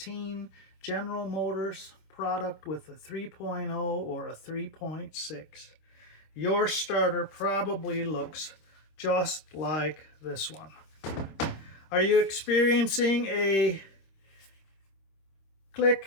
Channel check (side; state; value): right; late; 26 ms